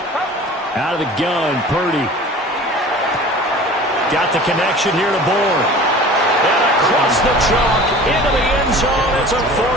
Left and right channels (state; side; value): normal; both; correlation 0.42